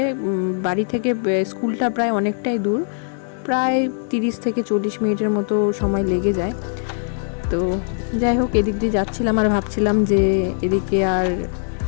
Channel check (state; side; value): silent; right; digital silence